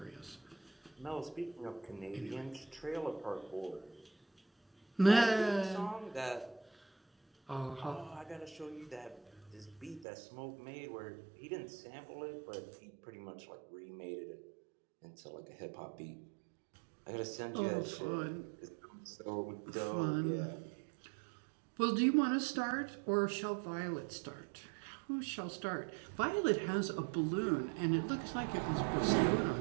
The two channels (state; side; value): drops out; left; at 10.1 s